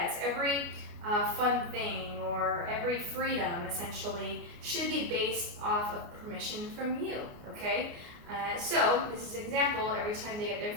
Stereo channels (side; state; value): left; late; 29 ms